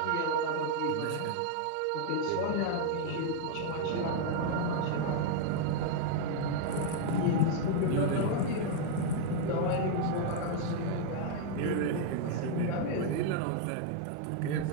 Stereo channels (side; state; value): both; different; correlation 0.00